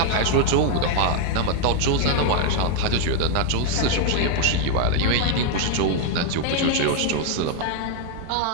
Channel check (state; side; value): different; both; correlation 0.00